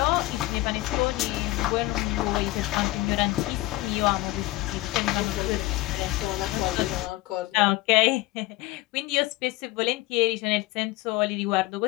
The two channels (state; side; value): quieter; right; 18.6 dB